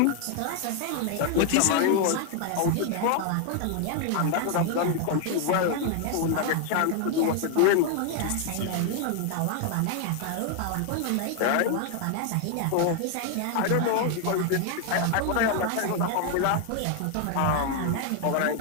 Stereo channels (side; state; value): both; different; correlation 0.00